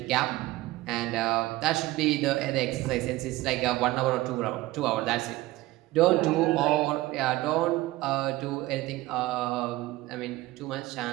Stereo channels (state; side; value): quieter; left; 18.4 dB